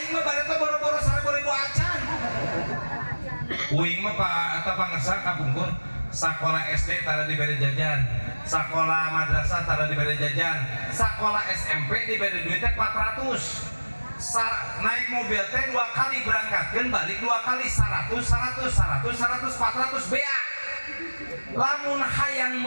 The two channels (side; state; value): both; inverted; correlation -1.00